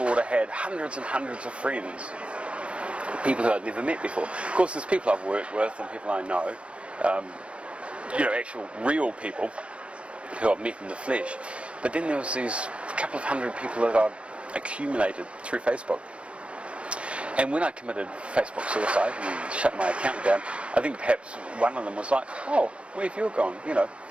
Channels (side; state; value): left; late; 0.060 ms